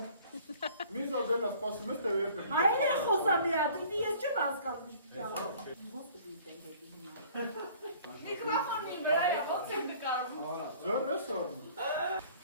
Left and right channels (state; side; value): inverted; both; correlation -0.52